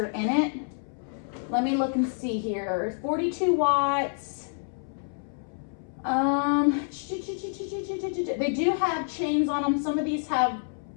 in it. Let me look and see here. 42 watts. They do have chains on them. Some of these have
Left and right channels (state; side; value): silent; right; 59 dB below the other